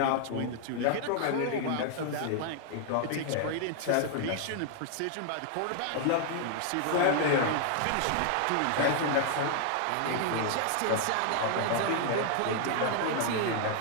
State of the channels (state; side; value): different; both; correlation 0.00